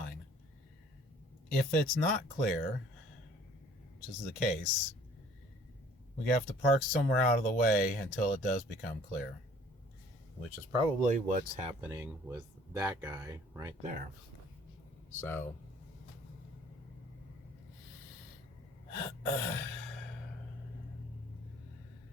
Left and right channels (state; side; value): normal; both; correlation 0.54